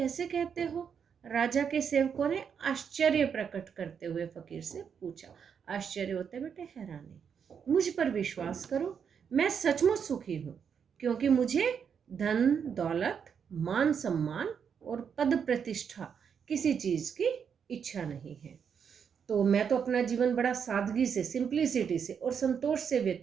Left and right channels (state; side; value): quieter; left; 7.1 dB